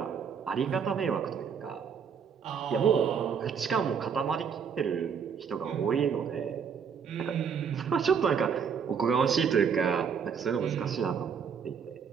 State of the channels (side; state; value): left; quieter; 6.8 dB